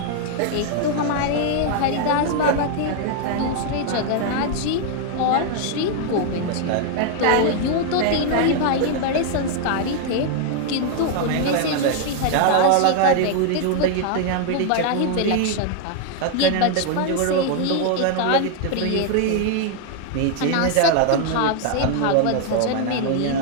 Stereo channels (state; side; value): different; both; correlation 0.00